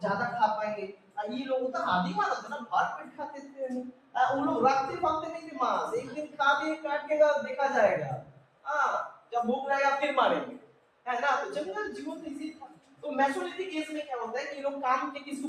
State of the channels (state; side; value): identical; both; correlation 1.00